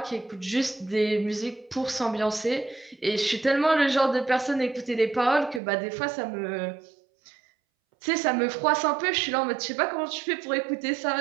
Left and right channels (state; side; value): drops out; left; at 5.6 s